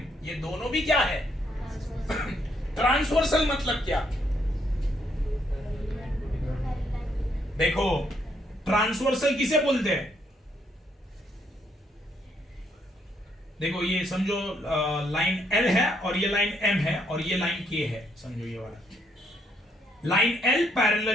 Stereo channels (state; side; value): normal; both; correlation 0.72